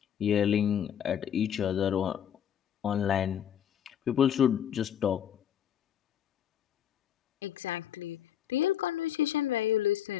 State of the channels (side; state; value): right; quieter; 9.6 dB